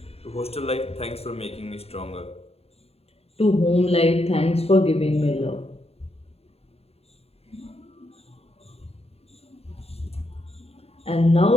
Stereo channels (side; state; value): right; late; 0.29 ms